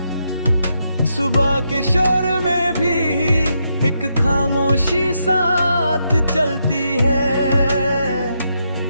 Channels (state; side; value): inverted; both; correlation -0.81